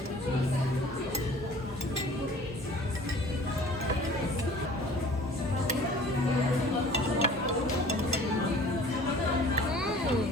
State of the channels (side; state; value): both; normal; correlation 0.48